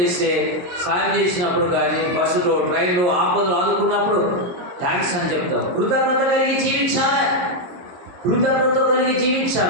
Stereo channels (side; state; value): left; late; 22 ms